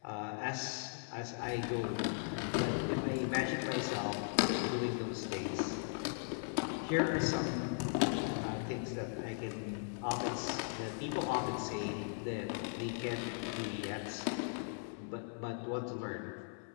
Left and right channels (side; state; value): right; silent; 52 dB below the other